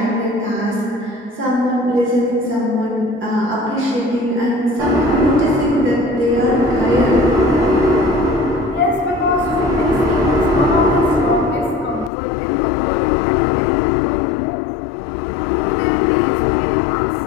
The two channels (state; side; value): drops out; right; at 12.1 s